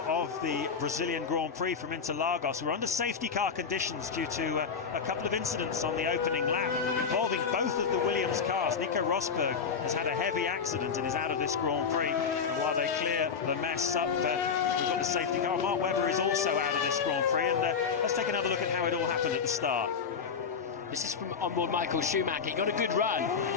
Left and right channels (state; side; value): quieter; right; 6.0 dB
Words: of the Brazilian Grand Prix from Interlagos. We're under safety car conditions due to a couple of incidents on the opening lap involving both of the Williams cars. Nico Rosberg has had a heavy accident and is out of this Grand Prix. And while they clear the mess up, we've got the safety car. Mark Webber is also out of this Grand Prix. And let's take another look at how it all happened at the start. This is from onboard Michael Schumacher. He got a good